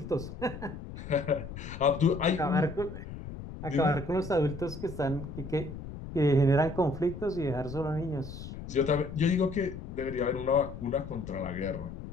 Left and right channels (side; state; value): left; noise; rumble, 10 dB below the sound